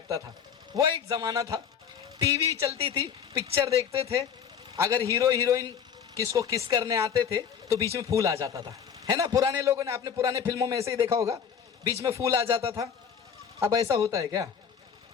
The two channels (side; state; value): right; quieter; 7.6 dB